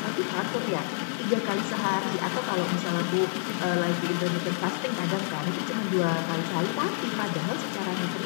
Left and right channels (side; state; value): right; silent; digital silence